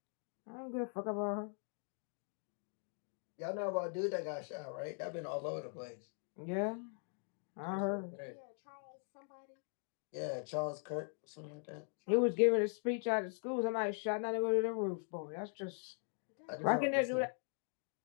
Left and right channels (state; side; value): silent; right; 51 dB below the other